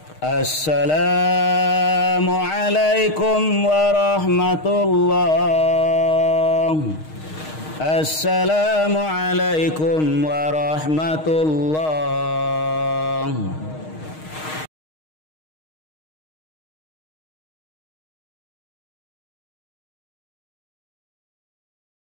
السلام عليكم ورحمة الله. السلام عليكم ورحمة الله.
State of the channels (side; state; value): right; late; 6.4 ms